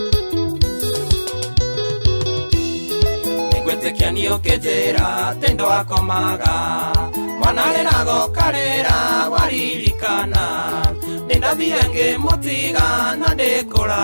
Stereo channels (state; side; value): inverted; both; correlation -1.00